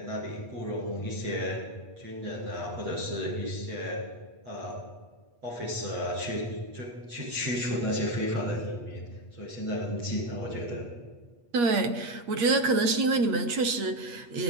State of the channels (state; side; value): late; left; 8.4 ms